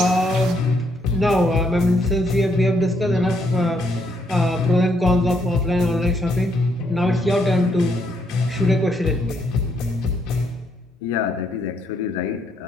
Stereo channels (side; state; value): both; normal; correlation 0.74